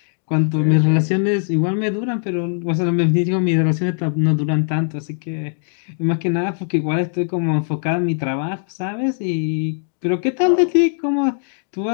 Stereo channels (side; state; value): right; silent; digital silence